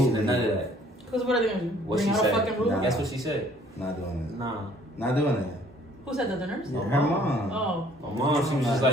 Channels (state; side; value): normal; both; correlation 0.58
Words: and none of that. Because what are they going to bring out a fucking rule? That's what she said. Not doing it. Nah. Not doing it. Who said that? The nurse? Yeah, her mom. Oh. My mom, she was just